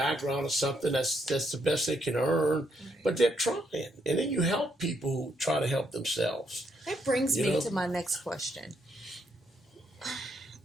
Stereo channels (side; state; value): both; normal; correlation 0.75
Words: or something, that's the best they can earn, but they're trying. And then you help people who try to help themselves. That brings me to my next question.